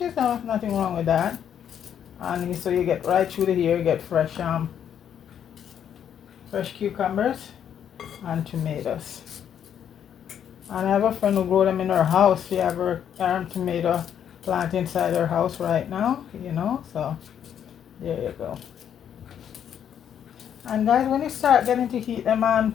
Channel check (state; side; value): quieter; right; 9.0 dB